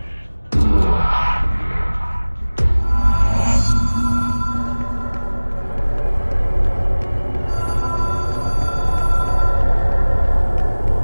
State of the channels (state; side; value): inverted; both; correlation -1.00